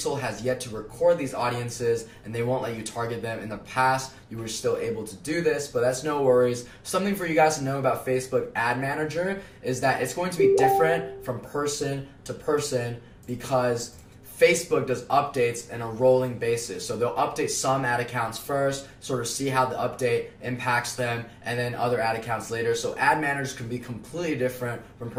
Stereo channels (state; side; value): identical; both; correlation 1.00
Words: has yet to record these audiences and they won't let you target them. In the past, you were still able to do this, but that's no worries. Something for you guys to know about Facebook Ad Manager is that it's going to be different from person to person because Facebook does updates on a rolling basis. So they'll update some ad accounts first, sort of see how the update impacts them, and then other ad accounts later. So ad managers can be completely different from